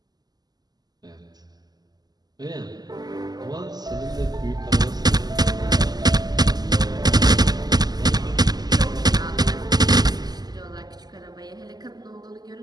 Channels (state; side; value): late; left; 0.20 ms